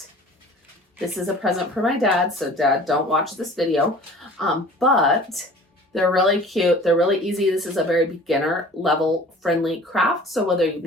This is a present for my dad, so Dad, don't watch this video. But they're really cute. They're really easy. This is a very beginner level friendly craft. So whether you've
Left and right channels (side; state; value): both; normal; correlation 0.45